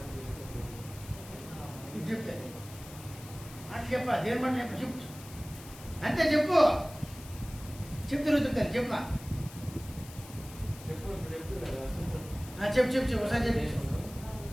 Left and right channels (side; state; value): left; noise; hiss, 17 dB below the sound